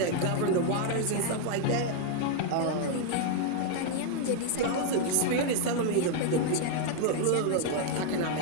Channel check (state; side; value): different; both; correlation 0.00